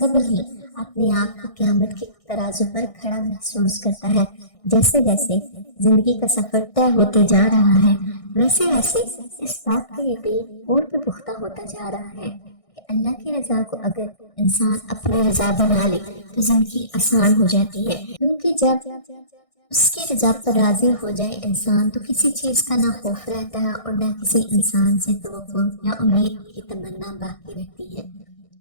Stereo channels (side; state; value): right; late; 1.6 ms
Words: ہی اپنے آپ کو قیامت کے ترازو پر کھڑا محسوس کرتا ہے۔ جیسے جیسے زندگی کا سفر طے ہوتے جا رہا ہے ویسے ویسے اس بات کا یقین اور بھی پختہ ہوتا جا رہا ہے کہ اللہ کی رضا کو اگر انسان اپنی رضا بنا لے تو زندگی آسان ہو جاتی ہے، کیونکہ جب اس کی رضا پر راضی ہو جائے انسان تو کسی چیز کا نہ خوف رہتا ہے اور نہ کسی انسان سے توقع یا امید کی تمنا باقی رہتی ہے۔